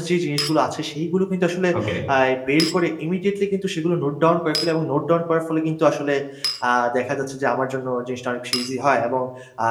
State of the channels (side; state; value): both; identical; correlation 1.00